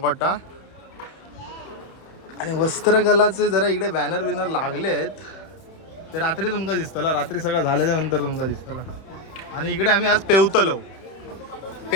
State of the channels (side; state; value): right; late; 31 ms